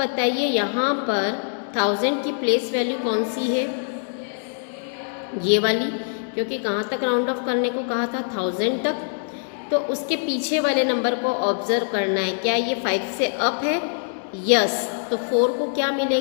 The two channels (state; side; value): silent; right; digital silence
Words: यहाँ पर 1000 की प्लेस वैल्यू कौन सी है? ये वाली, क्योंकि कहाँ तक राउंड ऑफ करने को कहा था 1000 तक। तो उसके पीछे वाले नंबर को ऑब्जर्व करना है। क्या ये 5 से अप है? यस। तो 4 को क्या